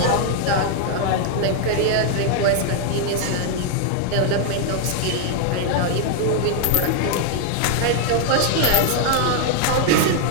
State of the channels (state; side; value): different; both; correlation 0.00